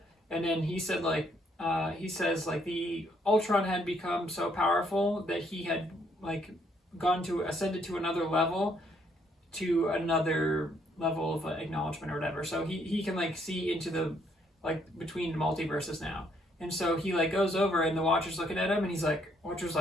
And then he said like, he says like the Ultron had become so powerful that he had like ascended to another level of acknowledgement or whatever. So he can like see into the like between multiverses now. And so he like goes over, and the Watcher's looking at him, and Watcher's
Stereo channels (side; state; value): both; normal; correlation 0.69